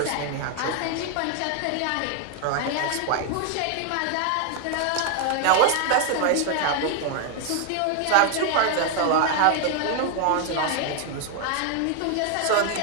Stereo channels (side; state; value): both; different; correlation 0.00